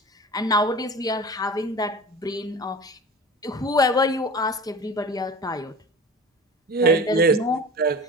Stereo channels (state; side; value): normal; both; correlation 0.36